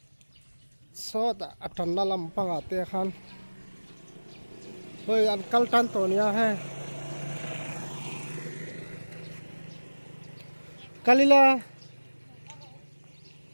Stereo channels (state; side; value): inverted; both; correlation -1.00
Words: so ta atan na lam panga te khan hoi an kal tan to nia he kalila